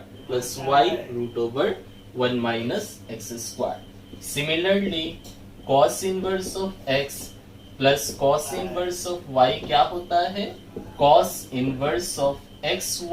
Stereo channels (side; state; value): both; identical; correlation 1.00